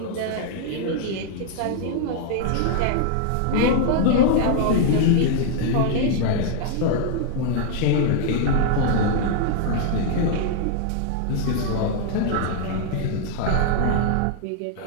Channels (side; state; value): both; different; correlation 0.00